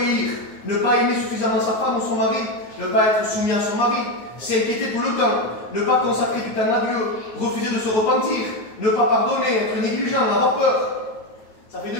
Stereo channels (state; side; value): late; right; 9.4 ms